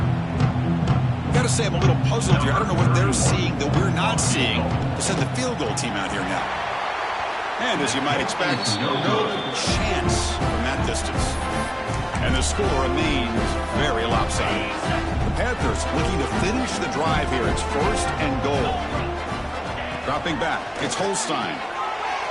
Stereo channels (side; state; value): both; identical; correlation 1.00